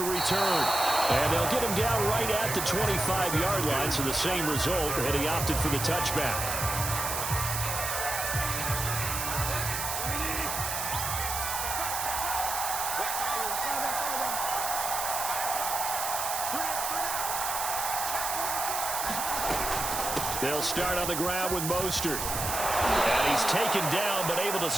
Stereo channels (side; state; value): right; noise; hiss, 3 dB below the sound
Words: return. And they'll get him down right at the 25-yard line, so the same result, and he opted for the touchback. They'll start on the ground with Mostert. And he's taken down, but able to